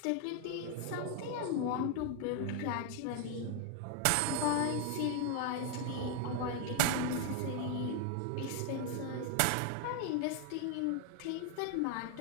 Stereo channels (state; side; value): different; both; correlation 0.00